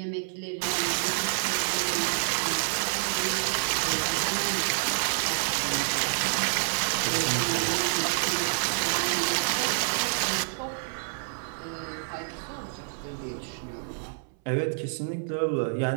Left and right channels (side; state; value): left; silent; 59 dB below the other